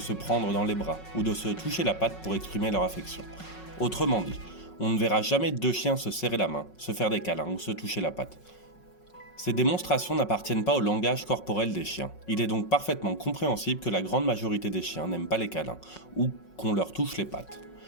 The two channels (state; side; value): late; right; 5.4 ms